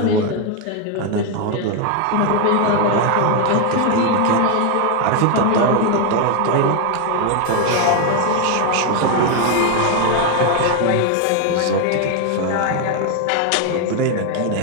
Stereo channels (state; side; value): different; both; correlation 0.01